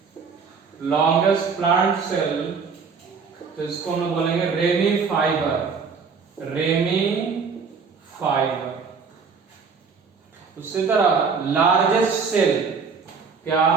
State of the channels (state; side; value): quieter; left; 5.4 dB